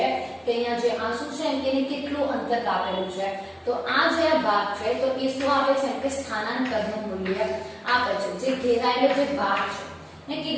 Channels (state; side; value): identical; both; correlation 1.00